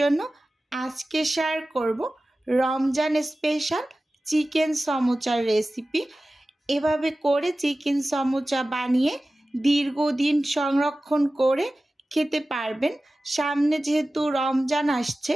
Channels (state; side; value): normal; both; correlation 0.96